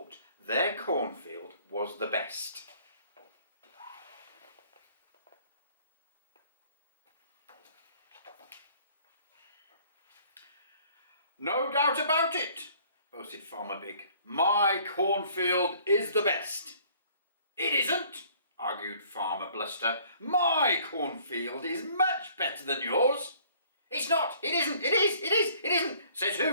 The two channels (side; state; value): both; inverted; correlation -0.57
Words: their cornfield was the best. "No doubt about it," boasted Farmer Big. "My cornfield is the best." "It isn't," argued Farmer Bluster. "My cornfield is much better than yours." "It's not, it isn't, it is, it is, it isn't." "Says